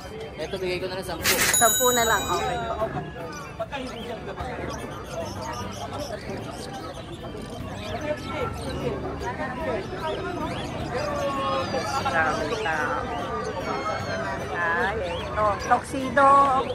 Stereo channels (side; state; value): both; identical; correlation 1.00